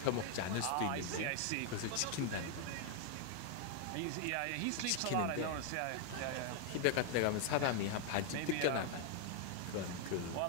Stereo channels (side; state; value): both; different; correlation 0.01